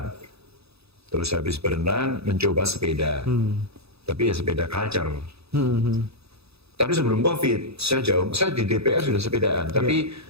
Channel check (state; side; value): late; left; 0.78 ms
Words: Terus habis berenang mencoba sepeda. Tapi ya sepeda culture. Tapi sebelum COVID, saya di DPR sudah sepedaan. Tapi